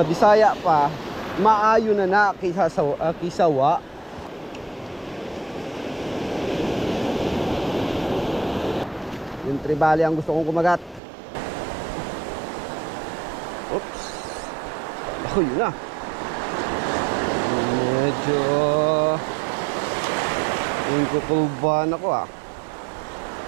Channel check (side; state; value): left; drops out; at 11.0 s